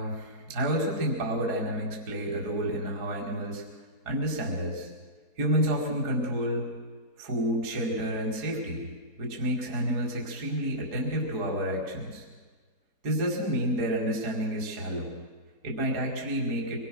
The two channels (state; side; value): late; left; 4.7 ms